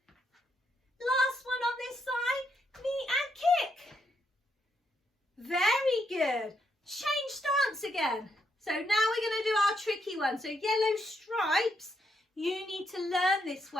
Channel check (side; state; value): both; normal; correlation 0.78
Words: Last one on this side, knee and kick. Very good. Change stance again. So now we're going to do our tricky one. So yellow stripes, you need to learn this